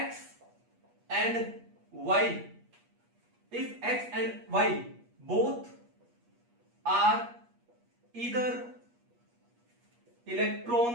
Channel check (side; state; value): left; late; 8.4 ms